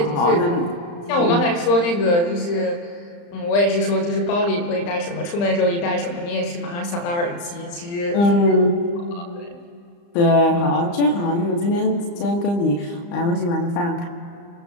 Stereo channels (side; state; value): right; late; 35 ms